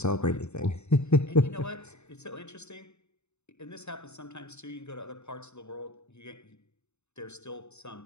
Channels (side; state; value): right; late; 0.82 ms